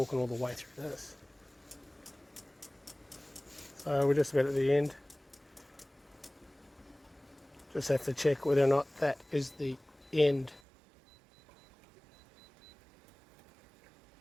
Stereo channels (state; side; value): drops out; left; at 10.6 s